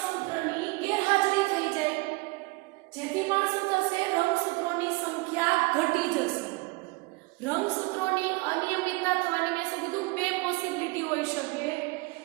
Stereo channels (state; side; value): quieter; left; 25.4 dB